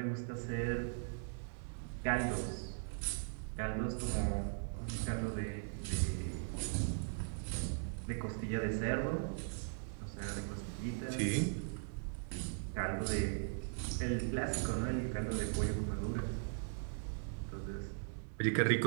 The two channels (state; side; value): silent; left; digital silence